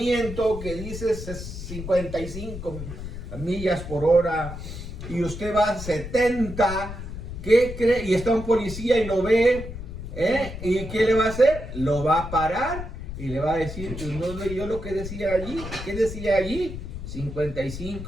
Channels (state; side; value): noise; left; rumble, 9 dB below the sound